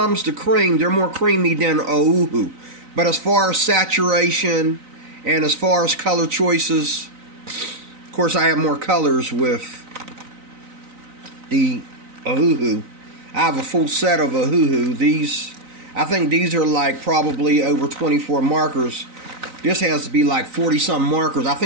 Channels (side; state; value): left; late; 3.9 ms